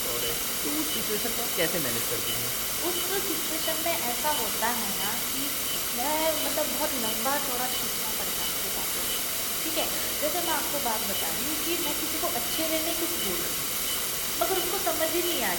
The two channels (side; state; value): both; identical; correlation 1.00